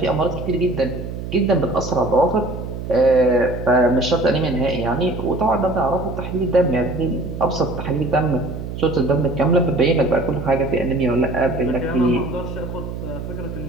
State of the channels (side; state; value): right; noise; hum, 8 dB below the sound